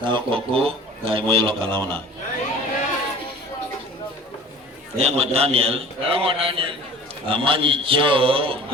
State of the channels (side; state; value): both; normal; correlation 0.43